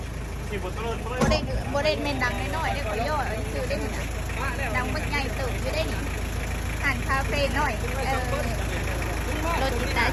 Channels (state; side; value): identical; both; correlation 1.00